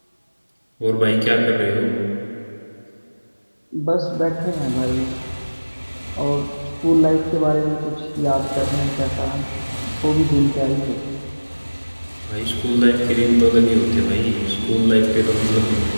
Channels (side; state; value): both; inverted; correlation -1.00